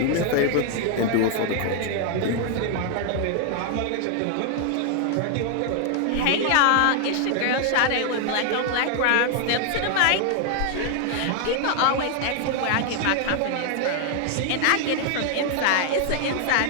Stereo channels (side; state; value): both; different; correlation 0.00